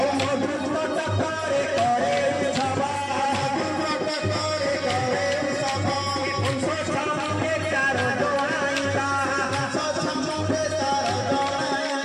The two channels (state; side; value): identical; both; correlation 1.00